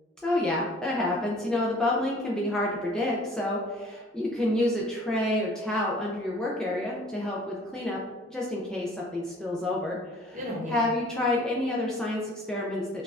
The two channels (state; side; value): normal; both; correlation 0.52